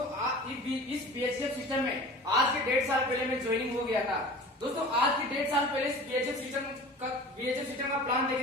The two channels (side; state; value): both; normal; correlation 0.40